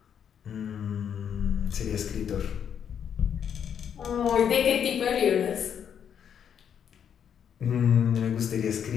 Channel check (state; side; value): quieter; right; 8.3 dB